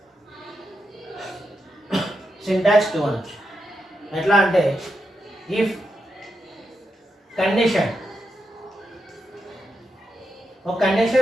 సింటాక్స్ 2 అనొచ్చు. ఎట్లా అంటే ఇఫ్ కండిషన్, ఒక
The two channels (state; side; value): normal; both; correlation 0.85